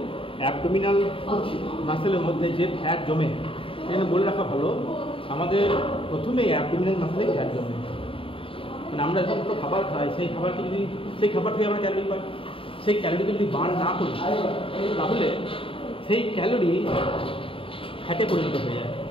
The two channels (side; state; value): right; late; 0.26 ms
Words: অ্যাবডোমিনাল মাসেলের মধ্যে যে ফ্যাট জমে সেখানে বলে রাখা ভালো, আমাদের প্রথমে অ্যাবডোমিনাল মাসেলে ফ্যাট জমে। মানে আমরা যখন কোনো খাবার খাই সেই খাবারকে যদি সেই খাবার থেকে আমরা ক্যালোরি পাই, সেই ক্যালোরিকে যদি বার্ন না করি তাহলে সেই ক্যালোরি ফ্যাটে পরিণত হয়ে যায়